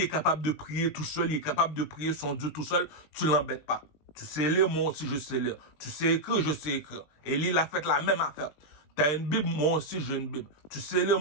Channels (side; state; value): right; late; 19 ms